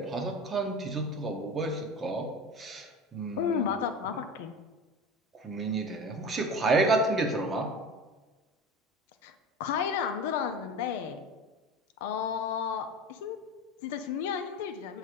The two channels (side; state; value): both; normal; correlation 0.31